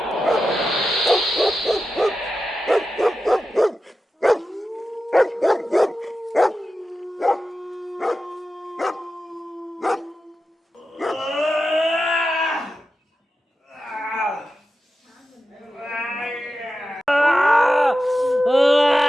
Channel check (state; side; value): normal; both; correlation 0.92